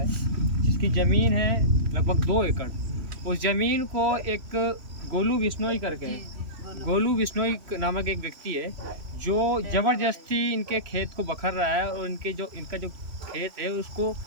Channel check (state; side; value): late; left; 3.1 ms